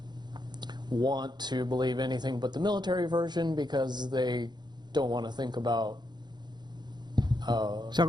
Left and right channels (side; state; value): left; late; 0.21 ms